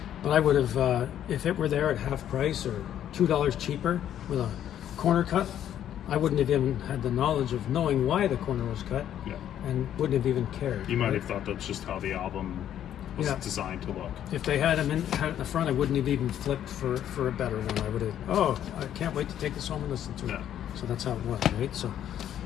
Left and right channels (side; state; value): right; quieter; 10.6 dB